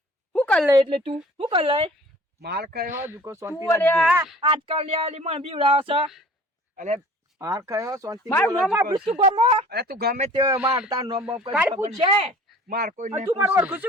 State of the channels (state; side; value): normal; both; correlation 0.48